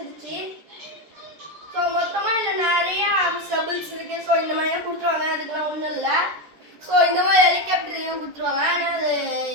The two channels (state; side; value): late; left; 13 ms